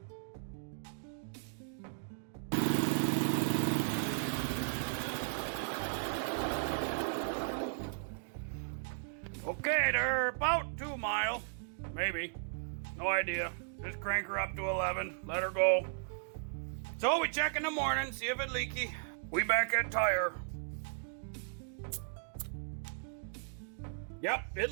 Okay, they're about 2 mile, maybe, no idea. Just crank her up to 11, let her go. So we check in the morning, see if it's leaky. We back at tire. Yep, it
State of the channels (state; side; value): silent; left; digital silence